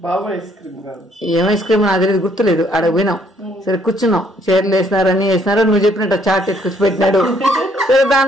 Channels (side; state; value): both; normal; correlation 0.67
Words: ఏం ఐస్ క్రీమ్ నాకు తెలియదు, గుర్తులేదు. ఆడ పోయినాం, సరే కూర్చున్నాం, చైర్లు వేసినారు, అన్ని వేసినారు. నువ్వు చెప్పినట్టు చాట్ ఎత్తుకొచ్చి పెట్టినాడు. సరే